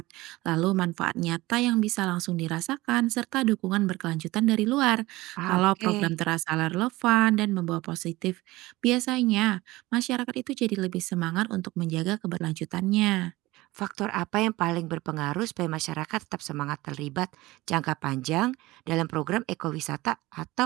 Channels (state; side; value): quieter; left; 19.4 dB